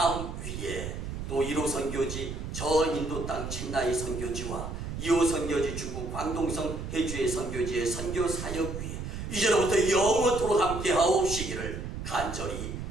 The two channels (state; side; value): noise; right; rumble, 6 dB below the sound